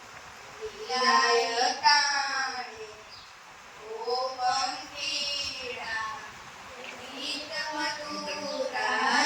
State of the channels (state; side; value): identical; both; correlation 1.00